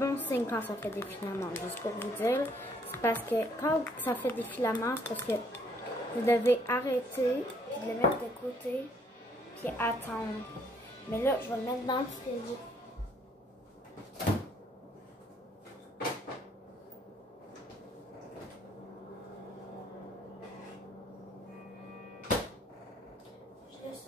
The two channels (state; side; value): normal; both; correlation 0.65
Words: signe quand ça fait des filaments, juste pour vous dire. C'est parce que quand ça fait des filaments, c'est parce que vous devez arrêter, puis de le mettre de côté, puis attendre. Mais là, je vais le mettre dans le frigo. Je le